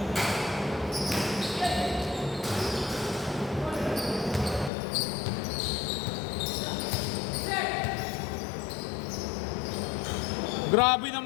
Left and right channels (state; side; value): drops out; right; at 4.7 s